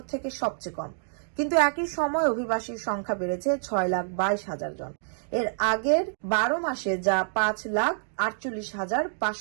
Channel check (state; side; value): silent; left; digital silence